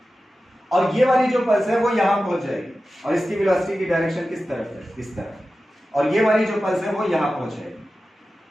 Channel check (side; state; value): both; normal; correlation 0.94